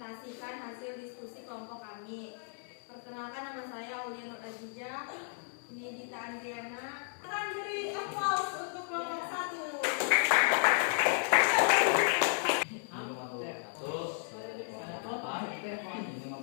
hasil diskusi kelompok kami. Perkenalkan, nama saya Aulia Nur Azizah, ini Dita Andriana. Akan beri applause untuk kelompok 1. Ini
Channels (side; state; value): right; silent; 55 dB below the other